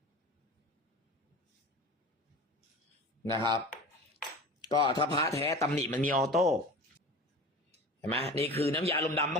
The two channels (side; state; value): both; normal; correlation 0.35